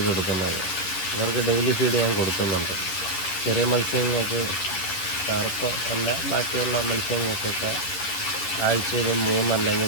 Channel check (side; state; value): right; late; 10 ms